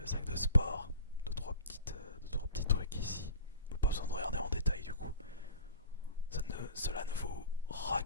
sac de sport. Deux trois petits trucs ici. Pas besoin de regarder en détail du coup. Cela ne vous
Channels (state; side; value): inverted; both; correlation -0.41